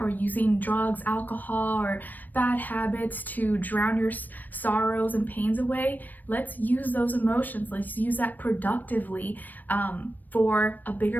using drugs, alcohol, or bad habits to drown your sorrows and pains away, let's use those emotions. Let's use that productively for a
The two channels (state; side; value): late; right; 0.087 ms